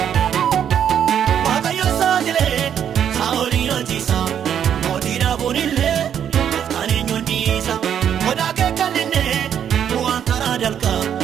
Waaqayyoon saaxilee saa'oliin hojiisa mootii dhaabuun illee gooftaan eenyuun dhiisa godaa kee kan inni bu'aan karaa dalqa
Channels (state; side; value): quieter; left; 9.0 dB